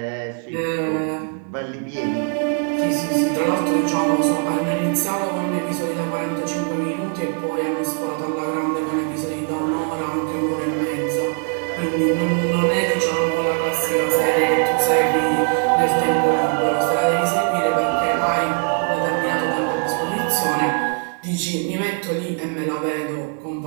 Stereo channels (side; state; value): left; quieter; 38.9 dB